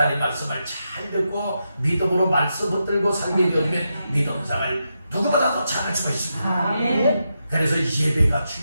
말씀을 잘 듣고 믿음으로 말씀 붙들고 살게 되면 믿음생활 누구보다도 잘할 수가 있습니다. 그래서 예배가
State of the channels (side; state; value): both; inverted; correlation -0.86